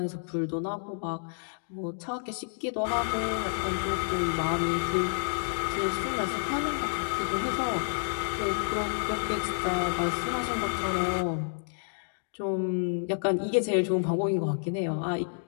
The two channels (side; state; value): right; silent; digital silence